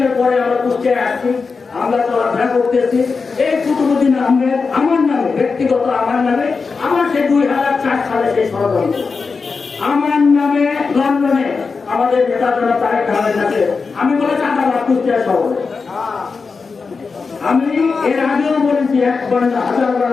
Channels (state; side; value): quieter; right; 4.7 dB